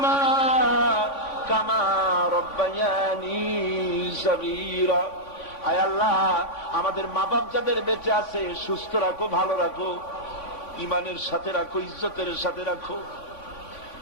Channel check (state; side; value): late; right; 3.5 ms